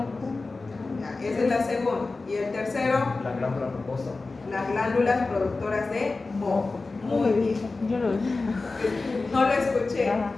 Ya, esa es la segunda. Y el tercero, La glándula mucosa. las glándulas productoras de moco. Muy bien. Yo lo vi. No lo escuché.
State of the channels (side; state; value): right; quieter; 3.7 dB